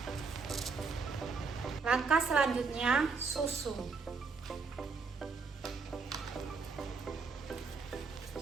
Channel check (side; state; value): left; quieter; 4.6 dB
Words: Langkah selanjutnya susu.